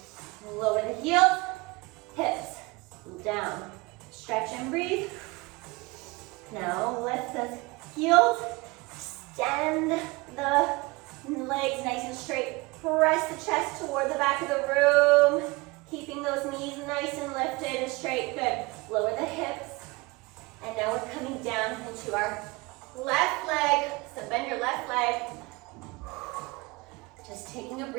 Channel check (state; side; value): quieter; left; 24.6 dB